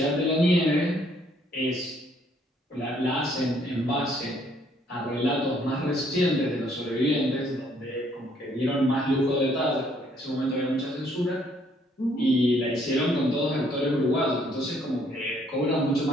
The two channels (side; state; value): both; normal; correlation 0.66